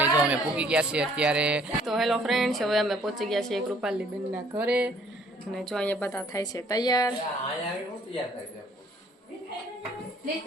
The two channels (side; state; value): both; normal; correlation 0.60